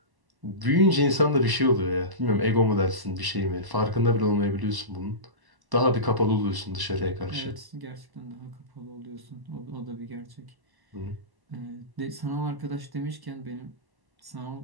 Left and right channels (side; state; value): left; late; 1.1 ms